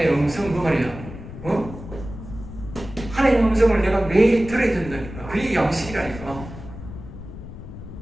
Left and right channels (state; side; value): noise; left; rumble, 12 dB below the sound